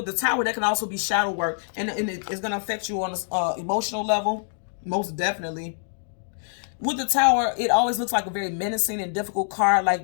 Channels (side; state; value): right; silent; digital silence